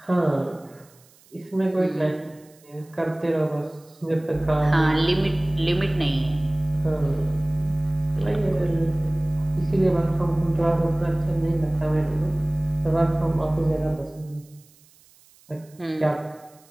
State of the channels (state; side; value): noise; right; hiss, 29 dB below the sound